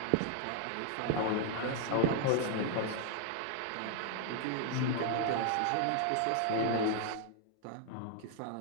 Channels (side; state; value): both; different; correlation 0.00